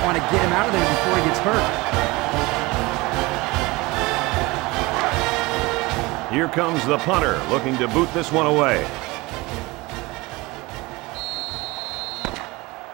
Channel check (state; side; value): quieter; left; 22.7 dB